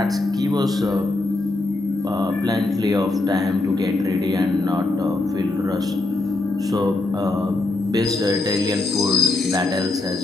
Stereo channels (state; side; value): quieter; right; 3.0 dB